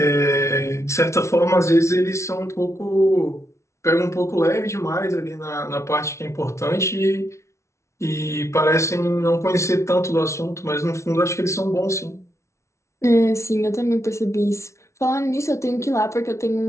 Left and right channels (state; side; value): late; right; 0.13 ms